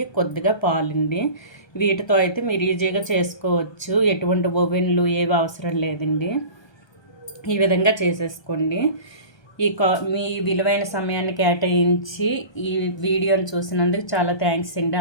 కొద్దిగా పాలండి. వీటితో అయితే మీరు ఈజీగా చేసుకోవచ్చు. ఎటువంటి ఓవెన్లు ఏవి అవసరం లేదండి. ఈ విధంగా చేసేసుకోండి. మీ విలువైన సమయాన్ని కేటాయించి ఈ వీడియోని చూసినందుకు చాలా థ్యాంక్స్ అండి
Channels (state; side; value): late; right; 1.3 ms